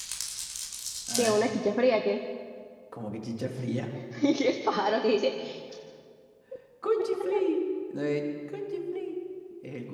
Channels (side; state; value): both; identical; correlation 1.00